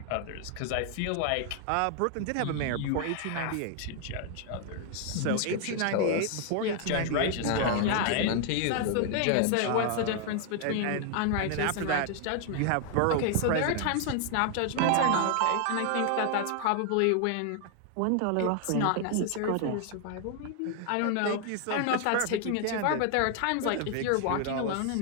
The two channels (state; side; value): different; both; correlation 0.00